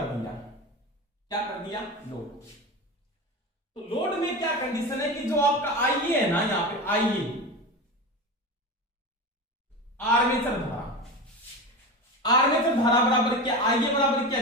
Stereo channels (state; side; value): normal; both; correlation 0.25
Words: दिया। क्या कर दिया, लोड। तो लोड में क्या कंडीशन है कि जो आपका आईए है ना, यहाँ पे आईए आर्मेचर धारा, आर्मेचर धारा बराबर क्या, आईए बराबर क्या,